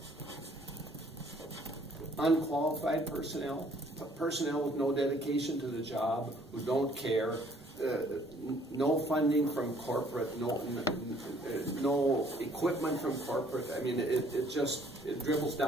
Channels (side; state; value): both; normal; correlation 0.60